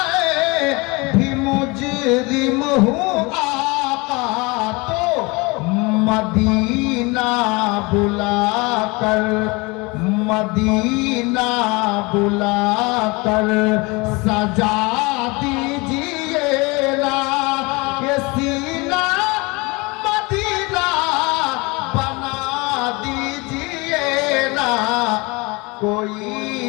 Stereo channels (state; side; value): quieter; right; 26.0 dB